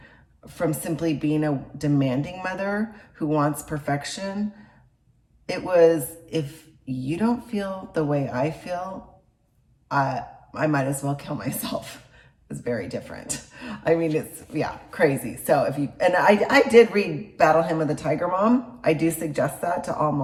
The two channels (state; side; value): identical; both; correlation 1.00